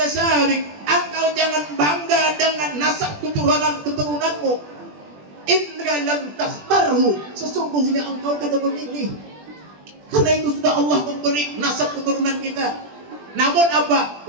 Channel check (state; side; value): late; left; 20 ms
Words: Engkau jangan bangga dengan nasab keturunanmu. Indra lam takhtarhu, sesungguhnya engkau kada memilih. Karena itu sudah Allah memberi nasab keturunan kita. Namun apa?